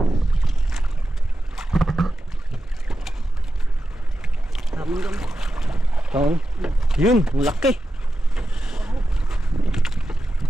Taon. Yun, laki.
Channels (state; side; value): normal; both; correlation 0.91